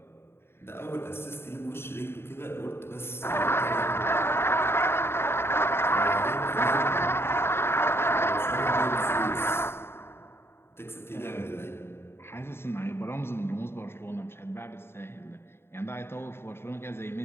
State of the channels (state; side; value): late; right; 0.11 ms